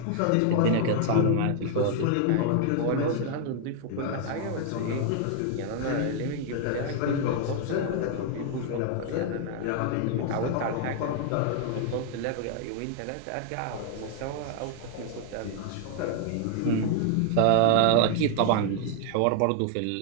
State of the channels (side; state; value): both; different; correlation 0.00